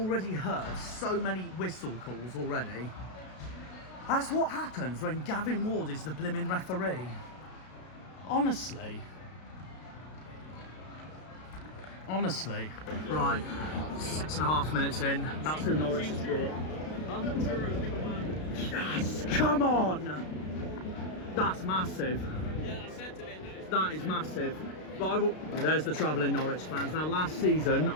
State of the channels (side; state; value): right; late; 32 ms